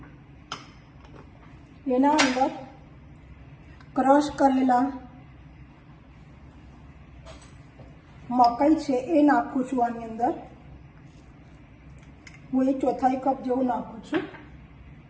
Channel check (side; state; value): both; identical; correlation 1.00